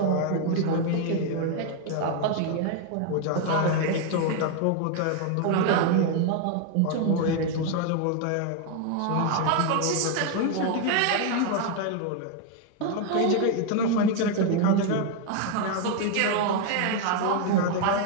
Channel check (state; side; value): different; both; correlation 0.01